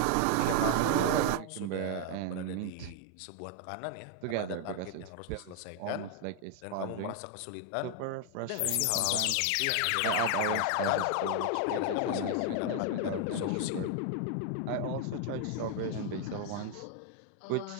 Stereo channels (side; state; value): both; different; correlation 0.00